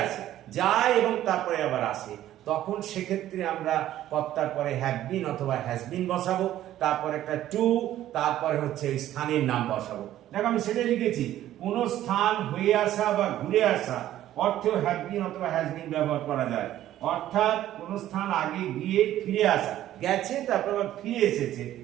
আসে, যায় এবং তারপরে আবার আসে, তখন সেক্ষেত্রে আমরা কর্তার পরে হ্যাভ বিন অথবা হ্যাজ বিন বসাবো, তারপর একটা টু, তারপরে হচ্ছে ওই স্থানের নাম বসাবো। দেখো আমি সেটাই লিখেছি, কোনো স্থান হয়ে আসা বা ঘুরে আসা অর্থেও হ্যাভ বিন অথবা হ্যাজ বিন ব্যবহার করা যায়। অর্থাৎ কোন স্থান আগে গিয়ে ফিরে আসা, গেছে তারপর আবার ফিরে এসেছে,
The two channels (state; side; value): quieter; left; 13.0 dB